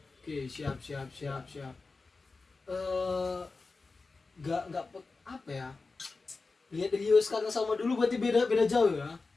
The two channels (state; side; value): quieter; right; 3.9 dB